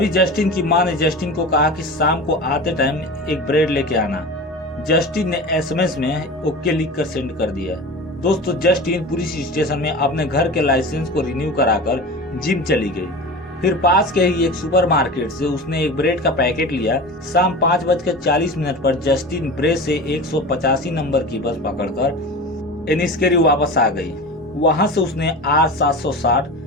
जस्टिन की मां ने जस्टिन को कहा कि शाम को आते टाइम एक ब्रेड लेके आना। जस्टिन ने एसएमएस में ओके लिख कर सेंड कर दिया। दोस्तों, जस्टिन पुलिस स्टेशन में अपने घर के लाइसेंस को रिन्यू कराकर जिम चली गई। फिर पास के ही एक सुपरमार्केट से उसने एक ब्रेड का पैकेट लिया। शाम 5:40 पर जस्टिन ब्रेड से 185 नंबर की बस पकड़कर एनिस्केरी वापस आ गई। वहां से उसने R760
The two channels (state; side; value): normal; both; correlation 0.32